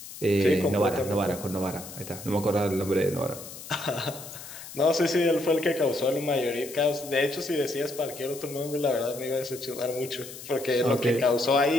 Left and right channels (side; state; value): left; noise; hiss, 13 dB below the sound